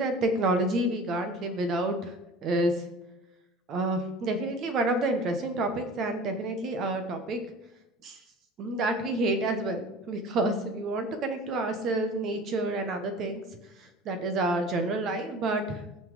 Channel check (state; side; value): normal; both; correlation 0.41